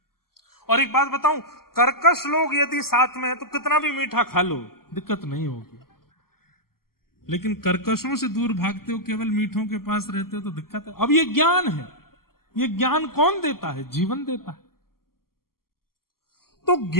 और एक बात बताऊं, कर्कश लोग यदि साथ में है तो कितना भी मीठा खा लो, दिक्कत नहीं होगी। लेकिन कर्कशों से दूर भागते हो, केवल मीठों के पास रहते हो तो दिक्कत है। अब ये ज्ञान है, ये ज्ञान कौन देता है? जीवन देता है। तो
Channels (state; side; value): late; right; 0.92 ms